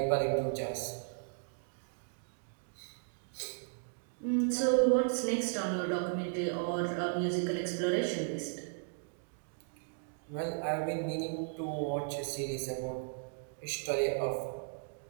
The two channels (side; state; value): left; silent; digital silence